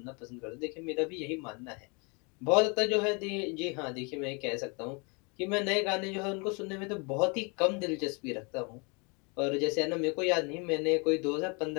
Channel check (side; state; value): right; quieter; 31.8 dB